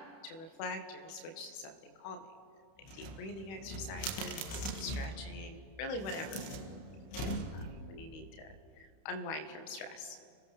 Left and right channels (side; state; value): right; late; 31 ms